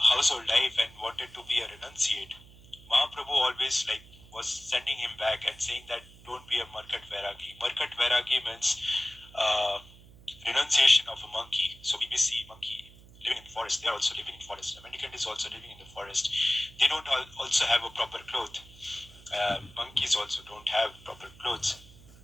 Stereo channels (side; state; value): right; noise; hum, 22 dB below the sound